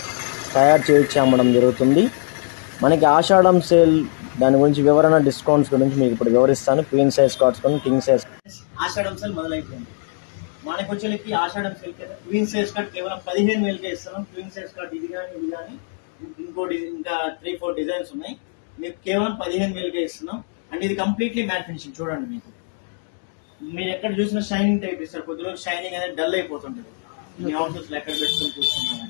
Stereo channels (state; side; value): silent; right; digital silence